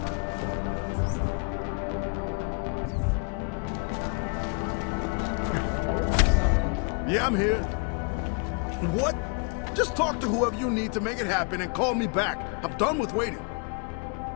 Yeah, I'm here. What? Just talk to whoever you need to make it happen and call me back. I'm done with waiting.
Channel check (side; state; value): right; quieter; 38.0 dB